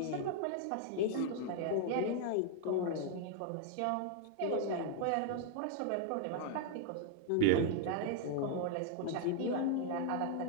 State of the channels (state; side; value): different; both; correlation 0.00